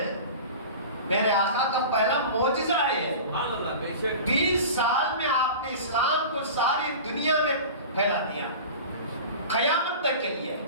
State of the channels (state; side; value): inverted; both; correlation -0.35